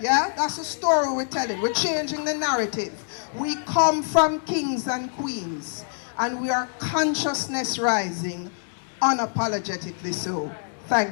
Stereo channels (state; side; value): silent; right; 62 dB below the other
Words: that's the story we're telling. We're changing the narrative. We come from kings and queens, and we are consciousness rising, unapologetically so.